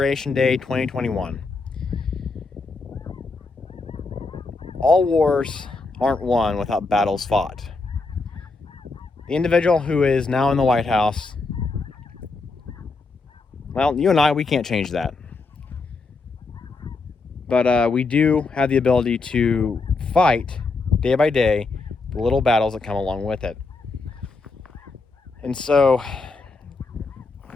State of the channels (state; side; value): quieter; right; 3.9 dB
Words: Day 2021. All wars aren't won without battles fought. The individual who is now in the White House, well, you and I, we can't change that. But we do have the ability to fight day by day the little battles that come along with it. And so